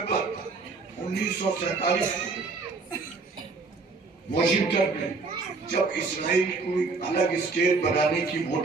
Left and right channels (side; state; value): left; quieter; 4.1 dB